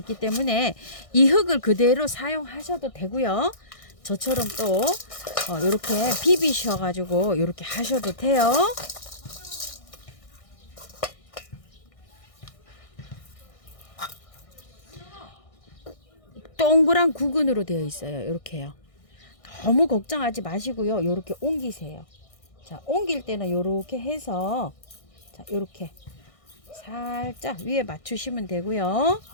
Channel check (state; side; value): late; right; 1.6 ms